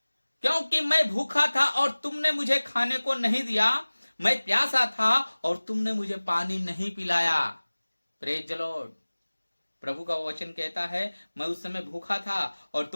क्योंकि मैं भूखा था और तुमने मुझे खाने को नहीं दिया, मैं प्यासा था और तुमने मुझे पानी नहीं पिलाया। Praise the Lord. प्रभु का वचन कहता है, मैं उस समय भूखा था और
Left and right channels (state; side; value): inverted; both; correlation -1.00